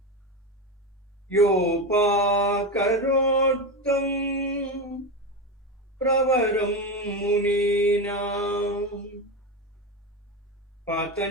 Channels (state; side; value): normal; both; correlation 0.16